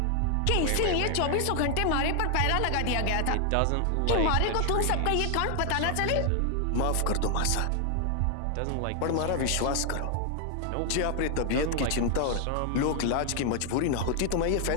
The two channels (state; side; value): different; both; correlation 0.00